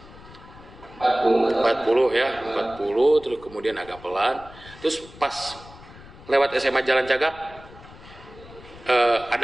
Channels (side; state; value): left; noise; rumble, 19 dB below the sound